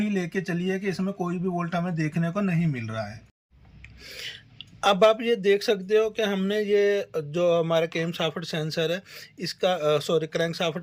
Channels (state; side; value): identical; both; correlation 1.00